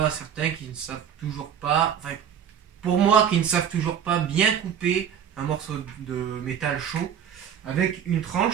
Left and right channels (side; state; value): left; quieter; 8.7 dB